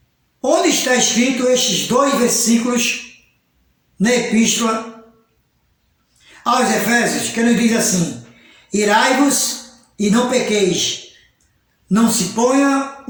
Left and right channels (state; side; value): identical; both; correlation 1.00